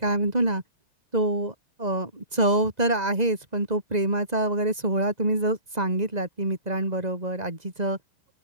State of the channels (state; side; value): late; left; 2.0 ms